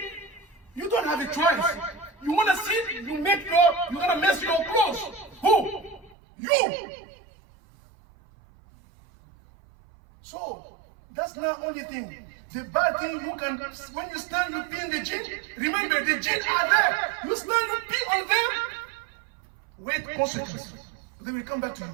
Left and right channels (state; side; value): drops out; left; at 6.2 s